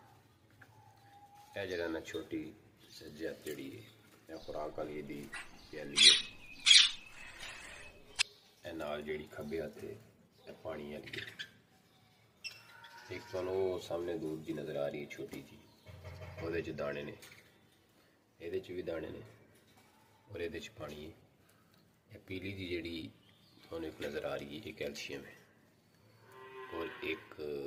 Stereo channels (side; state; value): both; identical; correlation 1.00